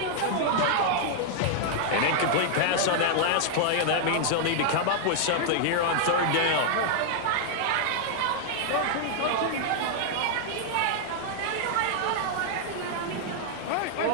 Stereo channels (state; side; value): different; both; correlation 0.00